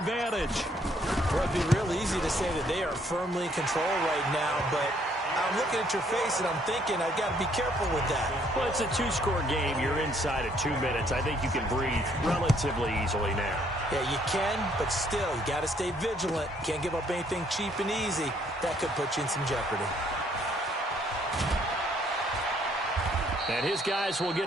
Well, it'd be real easy to say that they are firmly in control right now, but I'm looking at your face and I'm thinking I've got to be careful with that. Well, it's a two-score game. You're inside at 2 minutes. I think you can breathe relatively easily now. Yeah, you can, but still, you got to stay vigilant. Can't give up anything cheap and easy. That could put you in some jeopardy. And his guys will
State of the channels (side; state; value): both; normal; correlation 0.66